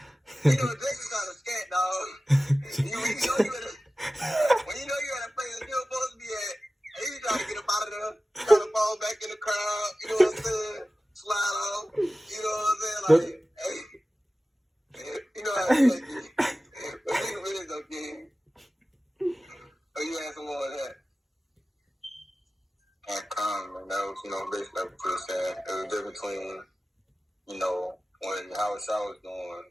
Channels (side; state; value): both; normal; correlation 0.95